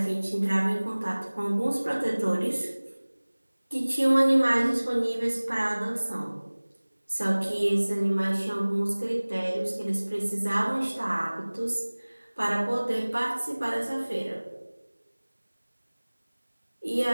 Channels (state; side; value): inverted; both; correlation -1.00